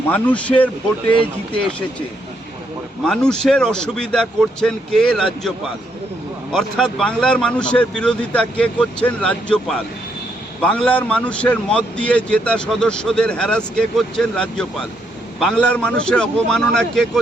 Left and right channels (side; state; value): both; normal; correlation 0.75